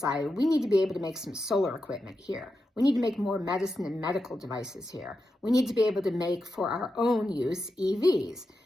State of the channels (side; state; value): both; normal; correlation 0.88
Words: we need to be able to make some solar equipment here. We need to make more medicine and medical devices here. We need to be able to make for our own use EVs.